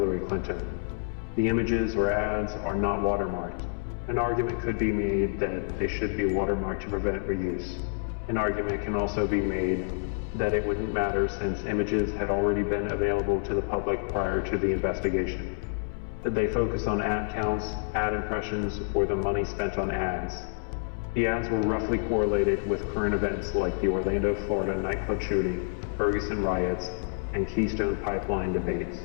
Clinton? The images or ads are not watermarked. An argument could be made that they should be watermarked to prevent reuse. An argument can also be made that it wouldn't matter since images had already been available to the public prior to the investigation. Did they focus on ad counts, ad impressions, or the money spent on ads? The ads were roughly correlated with current events like the Orlando, Florida nightclub shooting, Ferguson riots, and Keystone Pipeline debates.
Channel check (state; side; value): silent; right; 59 dB below the other